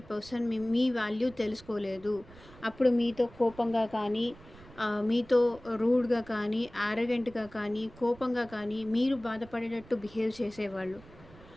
పర్సన్ మీ వాల్యూ తెలుసుకోలేదు. అప్పుడు మీతో కోపంగా కానీ, మీతో రూడ్‌గా కానీ, యారగెంట్‌గా కానీ, కోపంగా కానీ, మీరు బాధపడేటట్టు బిహేవ్ చేసేవాళ్ళు.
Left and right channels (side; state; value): right; noise; rumble, 21 dB below the sound